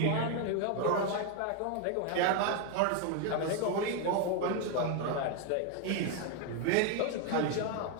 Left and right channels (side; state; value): both; different; correlation 0.01